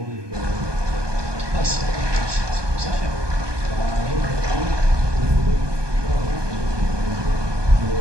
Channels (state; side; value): late; left; 1.2 ms